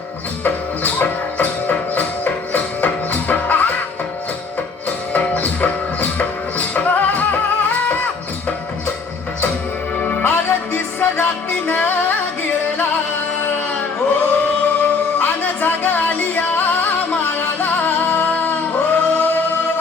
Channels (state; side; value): quieter; right; 4.6 dB